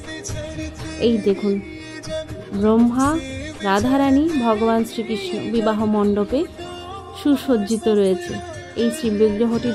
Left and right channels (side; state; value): both; identical; correlation 1.00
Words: এই দেখুন, ব্রহ্মা, রাধারানী, ভগবান শ্রীকৃষ্ণ বিবাহ মণ্ডপে সুসজ্জিত রয়েছে। এই শ্রীবিগ্রহটি